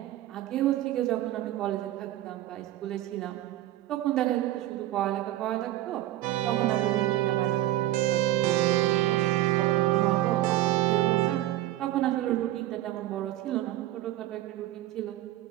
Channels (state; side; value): quieter; left; 14.7 dB